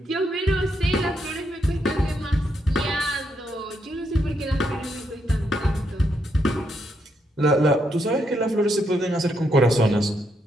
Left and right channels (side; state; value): both; normal; correlation 0.78